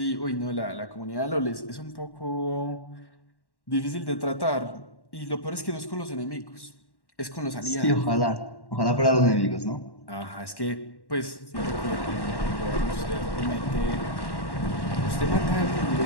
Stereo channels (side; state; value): right; late; 1.1 ms